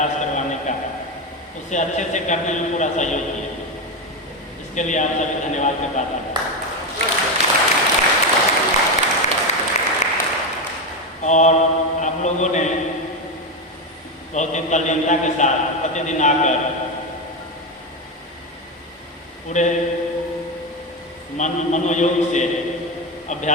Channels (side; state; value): both; normal; correlation 0.13